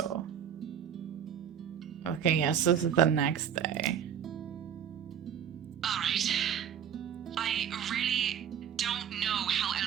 Okay, yes, this is the next day. Alright. I really don't know how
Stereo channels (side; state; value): left; quieter; 8.6 dB